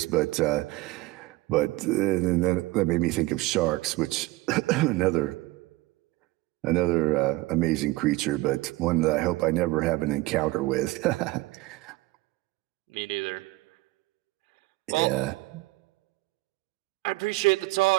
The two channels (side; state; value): left; quieter; 20.4 dB